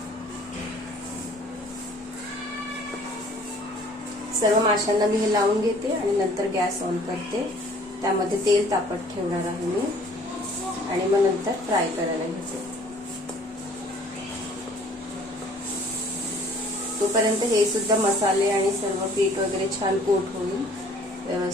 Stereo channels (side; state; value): both; normal; correlation 0.55